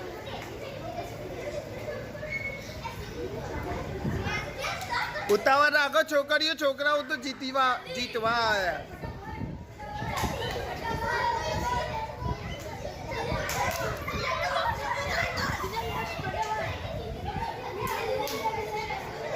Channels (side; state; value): both; identical; correlation 1.00